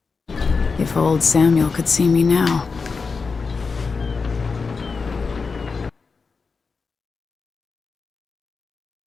If old Samuel could see me now.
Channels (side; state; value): right; quieter; 4.7 dB